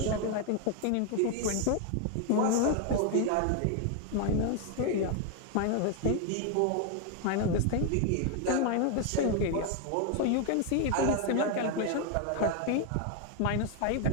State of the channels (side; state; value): both; different; correlation 0.00